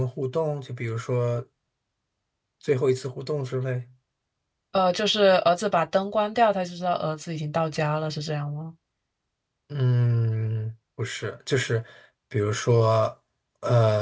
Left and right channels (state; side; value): identical; both; correlation 1.00